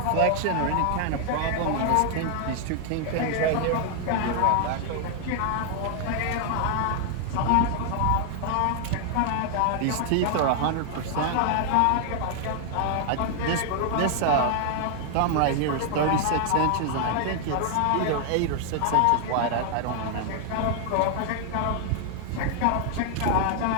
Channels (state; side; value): different; both; correlation 0.00